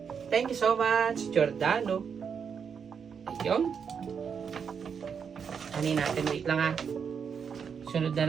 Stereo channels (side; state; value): left; quieter; 6.7 dB